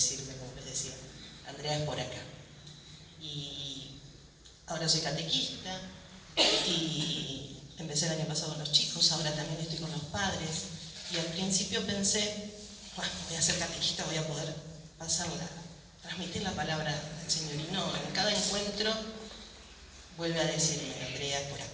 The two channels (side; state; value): both; identical; correlation 1.00